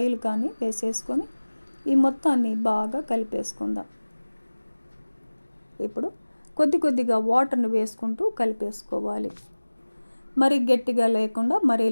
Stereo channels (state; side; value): inverted; both; correlation -1.00